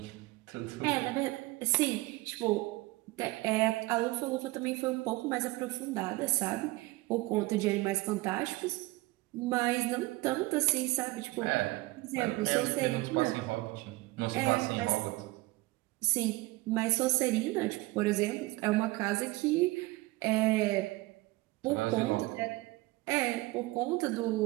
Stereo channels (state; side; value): quieter; left; 21.1 dB